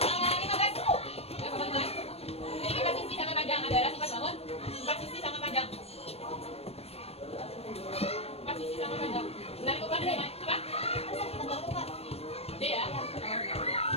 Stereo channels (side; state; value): right; late; 0.29 ms